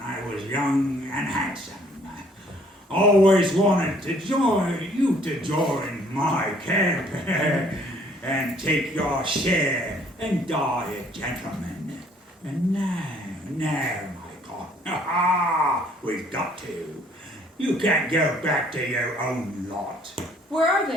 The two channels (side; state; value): both; normal; correlation 0.61